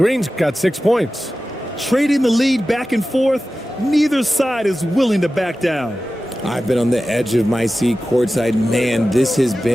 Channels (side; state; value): both; normal; correlation 0.94